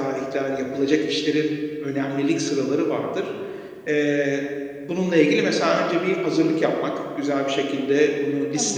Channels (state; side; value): identical; both; correlation 1.00